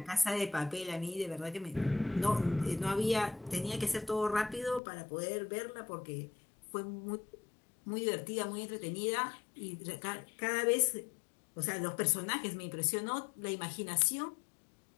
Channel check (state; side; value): drops out; right; at 4.8 s